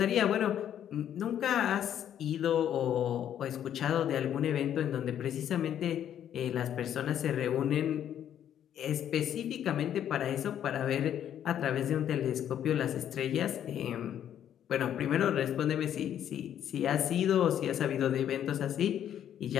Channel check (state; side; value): quieter; right; 10.1 dB